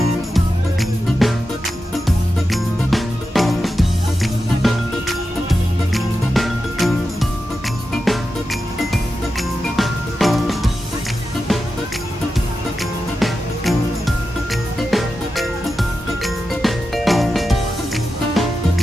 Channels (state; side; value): normal; both; correlation 0.90